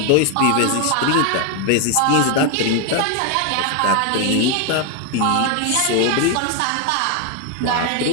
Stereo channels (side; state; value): both; different; correlation 0.01